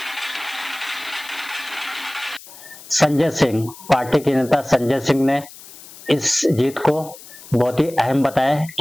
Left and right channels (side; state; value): left; noise; hiss, 18 dB below the sound